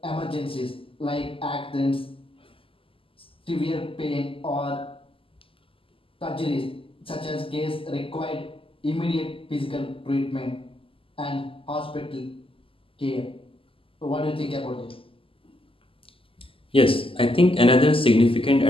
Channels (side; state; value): right; late; 0.26 ms